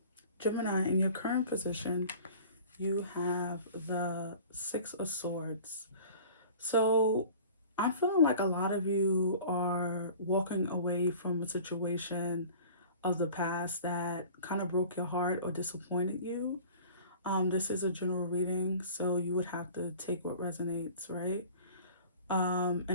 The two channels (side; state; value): both; inverted; correlation -0.44